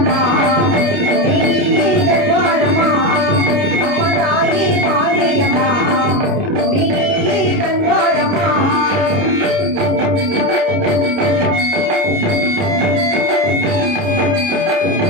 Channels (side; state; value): left; late; 29 ms